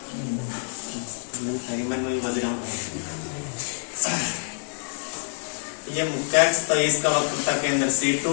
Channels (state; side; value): silent; right; 61 dB below the other